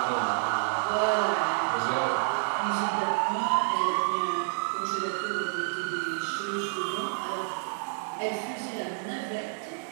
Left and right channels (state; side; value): silent; left; digital silence